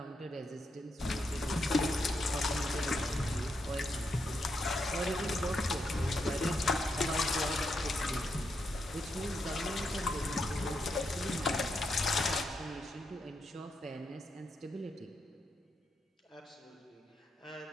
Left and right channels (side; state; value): both; normal; correlation 0.82